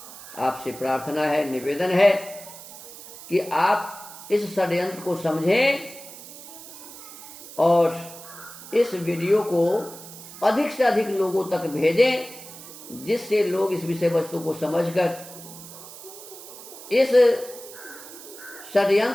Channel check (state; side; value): noise; right; hiss, 15 dB below the sound